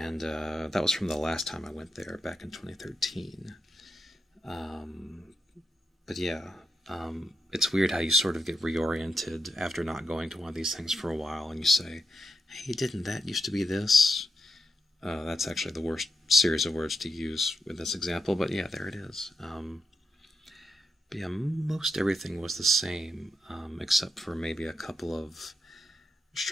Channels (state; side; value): normal; both; correlation 0.85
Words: that was from the last time I went there back in 2013. But yeah, it's weird how you sort of get reoriented after not going to one of these things for a while, and you say, hey, didn't that used to be this? That's actually the worst series of words to use with this example, but yeah, there it is. But yeah, most everything was the same, except for maybe a couple of